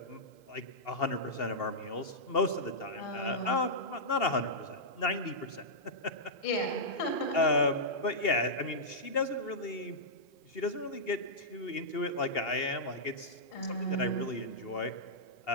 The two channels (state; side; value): late; right; 2.8 ms